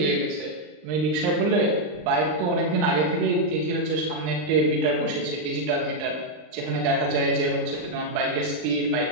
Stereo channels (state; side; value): late; left; 39 ms